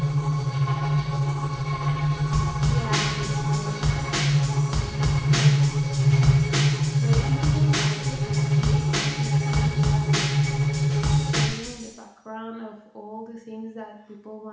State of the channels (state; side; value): identical; both; correlation 1.00